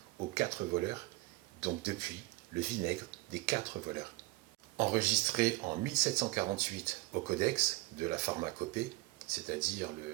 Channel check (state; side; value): quieter; left; 21.2 dB